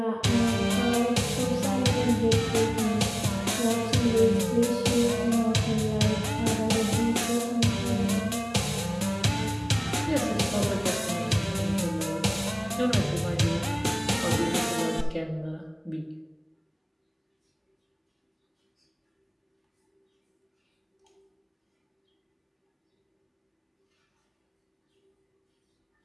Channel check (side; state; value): both; identical; correlation 1.00